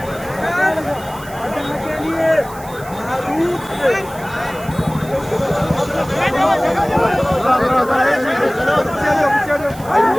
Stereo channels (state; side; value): noise; right; hiss, 19 dB below the sound